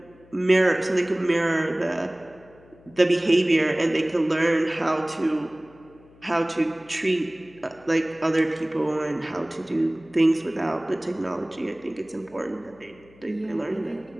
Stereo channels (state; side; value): noise; left; hum, 26 dB below the sound